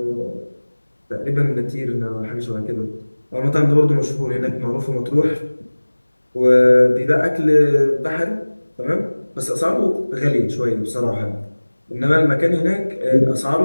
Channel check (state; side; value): inverted; both; correlation -1.00